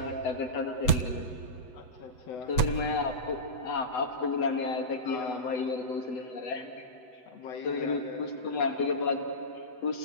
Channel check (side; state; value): right; late; 8.0 ms